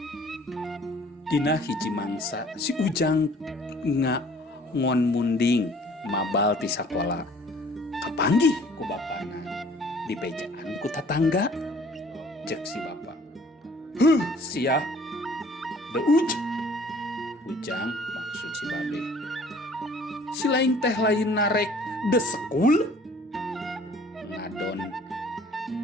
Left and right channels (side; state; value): both; normal; correlation 0.54